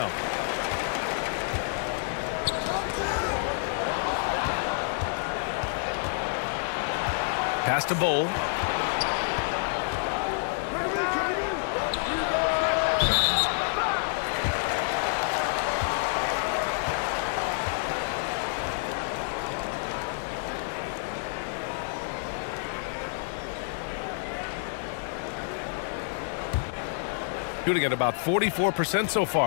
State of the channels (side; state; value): right; silent; 56 dB below the other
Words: Pass to Bowl. Shooting at about 44% so